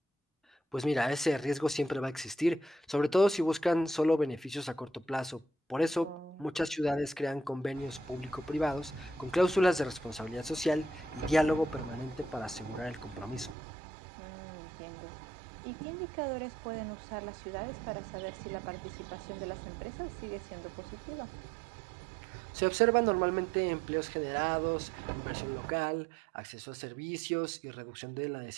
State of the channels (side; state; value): left; drops out; at 13.6 s